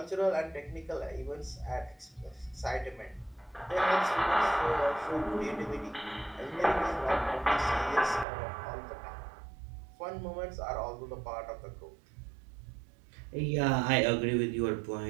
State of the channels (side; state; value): left; drops out; at 8.2 s